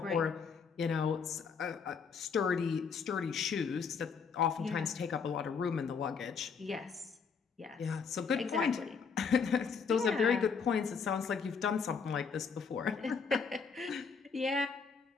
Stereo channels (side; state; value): right; quieter; 5.7 dB